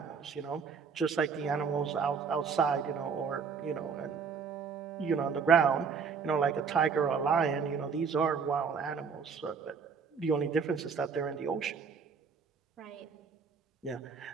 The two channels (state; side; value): quieter; left; 5.8 dB